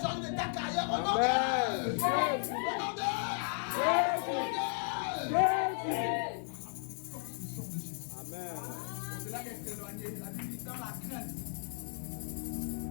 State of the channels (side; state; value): right; silent; 54 dB below the other